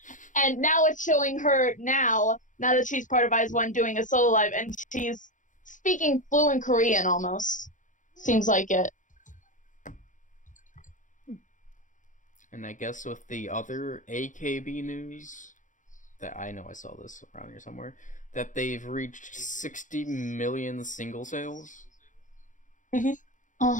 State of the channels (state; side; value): late; right; 0.37 ms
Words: And now it's showing her now that she's part of IZ*ONE doing a solo live, and she's speaking fluent Korean almost. Seems like it. And I guess with the other AKB news, that I know I saw this around here somewhere, that they've reached 60 million single sales.